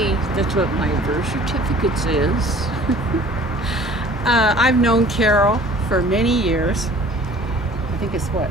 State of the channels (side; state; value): both; normal; correlation 0.49